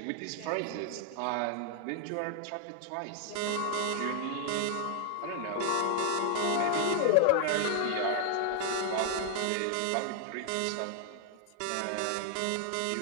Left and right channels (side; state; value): both; different; correlation 0.00